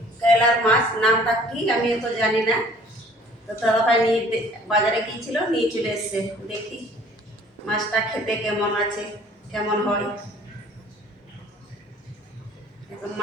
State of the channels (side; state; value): both; normal; correlation 0.54